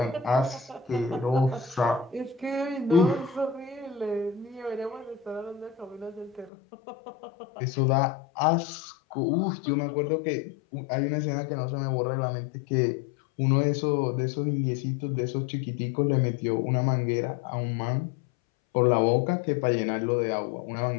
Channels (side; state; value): right; drops out; at 6.5 s